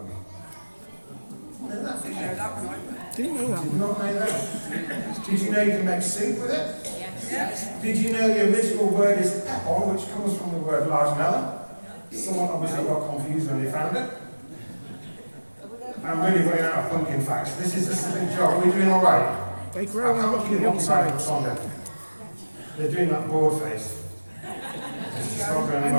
Know that? Didn't know that one either. Didn't know that. Did not know that. Did you know you can make soup with it? Yes. Did you know the original word is pepper, which comes from the word large melon? Someone obviously got confused when they found it. I'm really running out of pumpkin facts. This is just a big job. Are we doing all right? They grow on rocky hillsides. They're doing that board face. It's just not going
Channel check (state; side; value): inverted; both; correlation -1.00